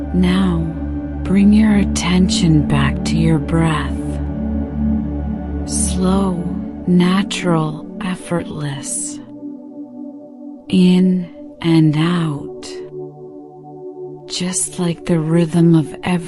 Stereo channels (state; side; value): identical; both; correlation 1.00